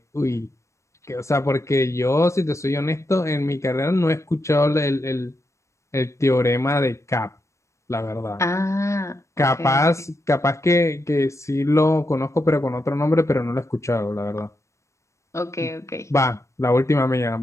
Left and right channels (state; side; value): late; right; 0.14 ms